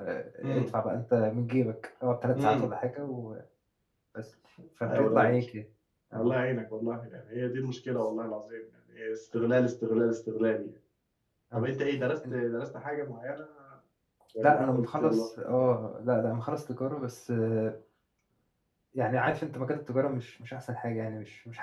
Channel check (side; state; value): both; identical; correlation 1.00